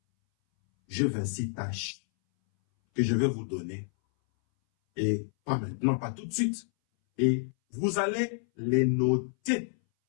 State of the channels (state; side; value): silent; right; 59 dB below the other